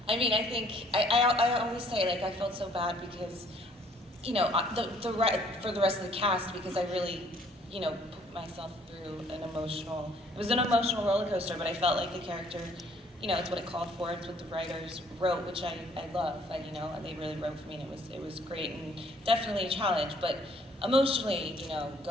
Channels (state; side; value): normal; both; correlation 0.61